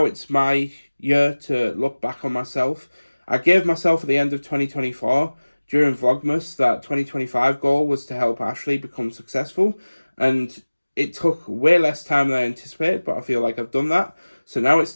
it's my year to look back on myself. I gave myself at the end of 2024, during Vlogmas, that 2025 goal was to help Ashley become successful. And it took way less time than I anticipated, but I feel like I've done that. So now it's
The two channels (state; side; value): inverted; both; correlation -1.00